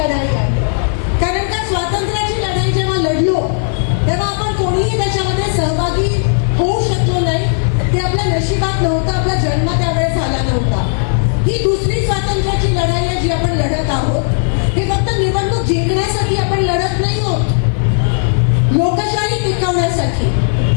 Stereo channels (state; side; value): silent; right; digital silence